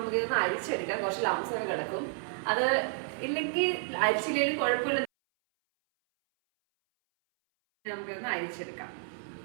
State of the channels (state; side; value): silent; left; 57 dB below the other